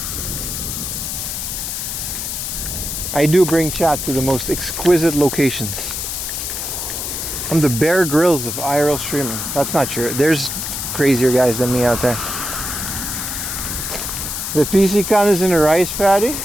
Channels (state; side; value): noise; left; hiss, 4 dB below the sound